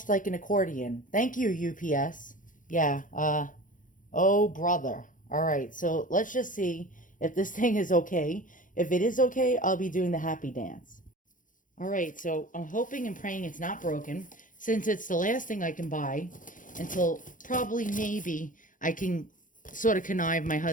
like an accordion. Thank you, UPS. Yeah, oh brother. All right, so let's just see if this thing is okay. If it is okay, I'll be doing the happy dance. All right, so I'm hoping and praying it's not broken since it's the last thing I can buy until probably maybe I can sort of connive my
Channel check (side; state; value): right; late; 0.38 ms